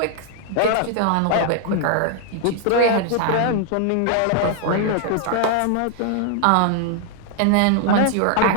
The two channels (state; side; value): different; both; correlation 0.00